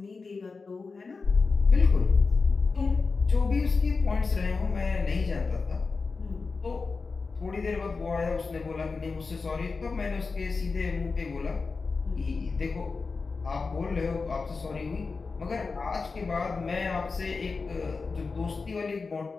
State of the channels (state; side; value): quieter; right; 4.4 dB